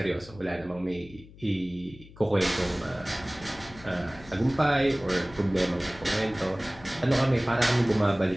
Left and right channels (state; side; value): noise; left; hum, 20 dB below the sound